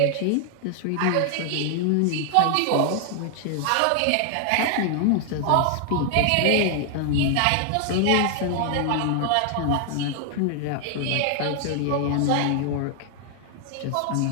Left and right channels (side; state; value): both; different; correlation 0.00